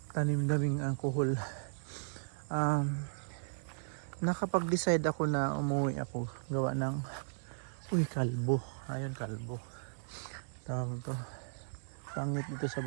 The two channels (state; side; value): silent; left; 54 dB below the other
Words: tanim daming alcohol. Nakapag-decide ako na umuwi ako gawa ng kalbo. Ayun, kalbo tawag to. Pangit dito sa